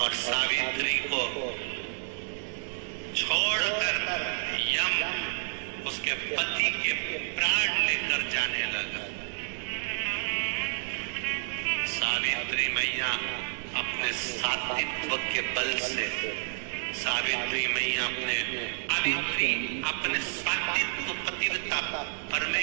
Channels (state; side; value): silent; left; 58 dB below the other